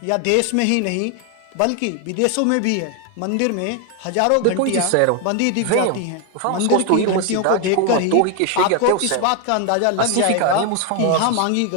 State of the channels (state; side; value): different; both; correlation 0.01